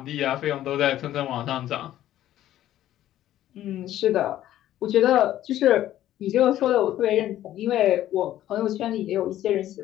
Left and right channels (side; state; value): right; quieter; 12.9 dB